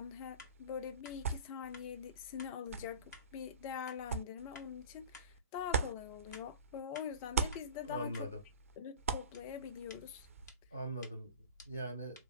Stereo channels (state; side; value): inverted; both; correlation -0.37